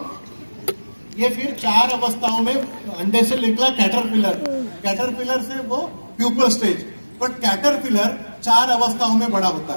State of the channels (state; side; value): inverted; both; correlation -1.00